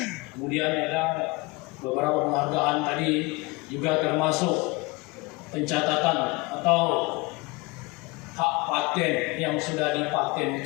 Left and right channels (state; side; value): quieter; right; 24.5 dB